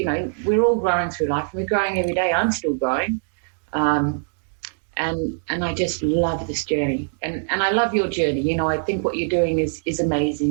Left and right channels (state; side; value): silent; left; digital silence